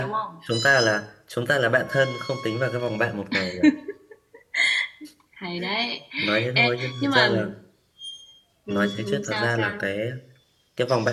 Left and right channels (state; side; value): identical; both; correlation 1.00